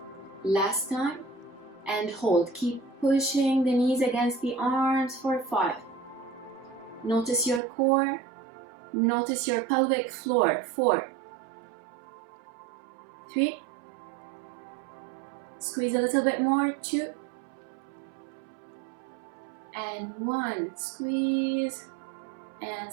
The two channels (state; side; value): drops out; left; at 7.6 s